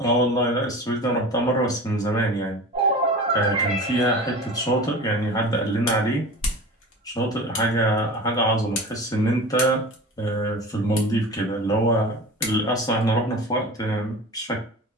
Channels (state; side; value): normal; both; correlation 0.35